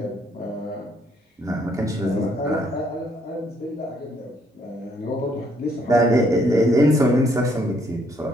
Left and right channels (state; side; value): normal; both; correlation 0.68